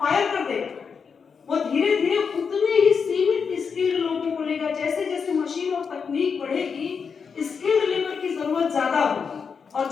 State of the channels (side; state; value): right; quieter; 6.0 dB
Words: कर देगा। वो धीरे धीरे उतने ही सीमित स्किल्ड लोगों को लेगा। जैसे जैसे मशीन और तकनीक बढ़ेगी, स्किल्ड लेबर की जरूरत ज्यादा होगी और